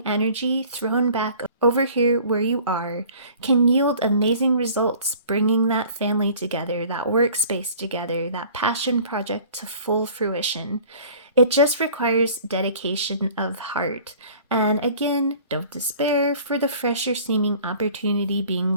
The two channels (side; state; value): both; inverted; correlation -0.49